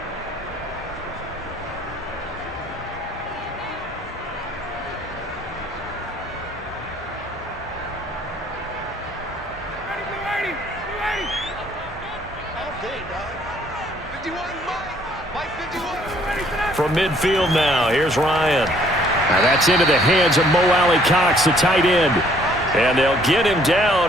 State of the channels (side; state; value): both; normal; correlation 0.62